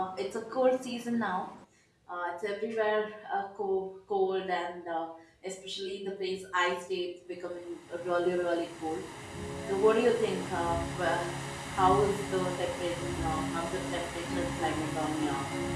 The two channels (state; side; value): identical; both; correlation 1.00